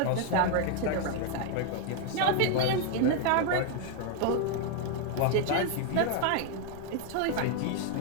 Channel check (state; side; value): different; both; correlation 0.01